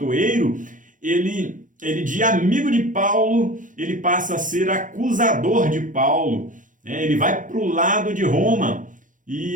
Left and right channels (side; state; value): left; late; 0.38 ms